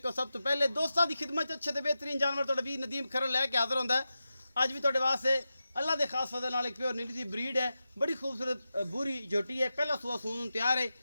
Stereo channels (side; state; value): both; inverted; correlation -0.91